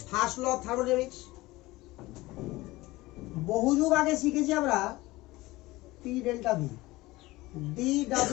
First law of thermodynamics. বহু যুগ আগে শিখেছি আমরা p delta v,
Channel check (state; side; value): quieter; right; 19.7 dB